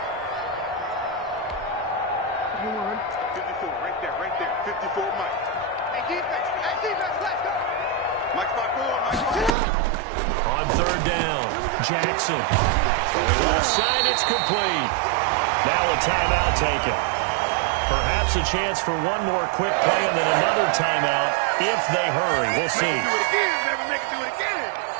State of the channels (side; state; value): left; drops out; at 9.5 s